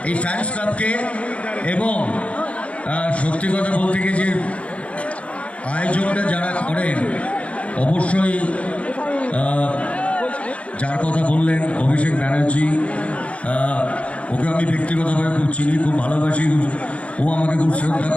এই ফ্যান্স ক্লাবকে। এবং সত্যি কথা বলতে গিয়ে যে আয়োজনটা যারা করেন, অবশ্যই যার কথা বললেন অভিষেক ব্যানার্জি, ওকে আমি ব্যক্তিগতভাবে খুব চিনি, খুব ভালোবাসি, ও আমাকে খুব শ্রদ্ধা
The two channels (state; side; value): late; right; 0.063 ms